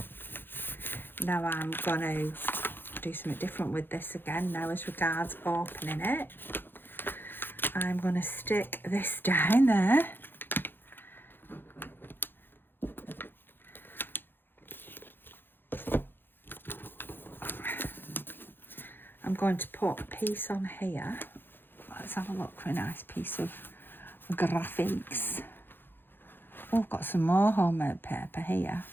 Now I'm going to do something different with this again now as regards opening it. I'm going to stick this down there. I'm going to put a piece on here. Let's have a look for a nice piece of graphics. Oh, I've got some more homemade paper here.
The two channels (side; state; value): right; late; 0.099 ms